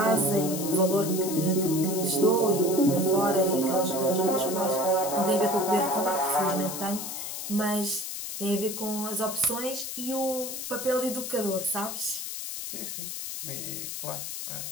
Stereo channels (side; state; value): left; noise; hiss, 6 dB below the sound